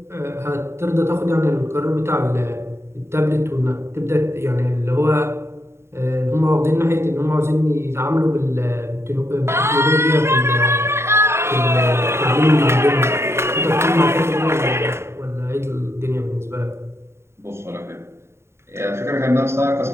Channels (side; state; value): left; late; 0.13 ms